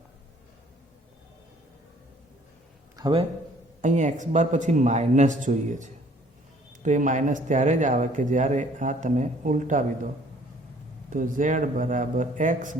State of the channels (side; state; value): both; normal; correlation 0.58